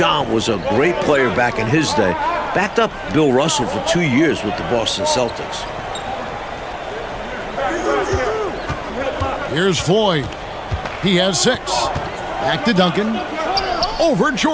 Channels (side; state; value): both; identical; correlation 1.00